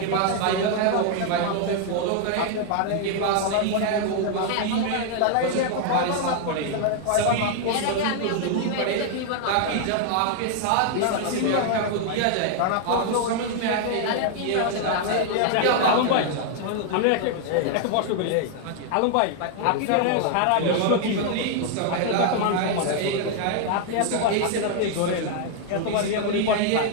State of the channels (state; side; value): different; both; correlation 0.00